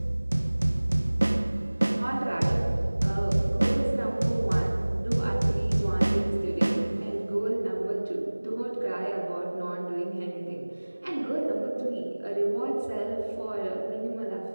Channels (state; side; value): inverted; both; correlation -1.00